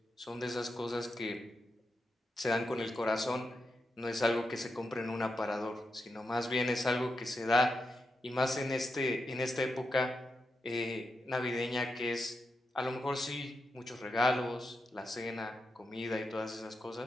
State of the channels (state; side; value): normal; both; correlation 0.87